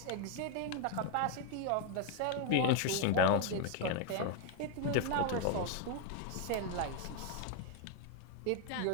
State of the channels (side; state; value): both; different; correlation 0.01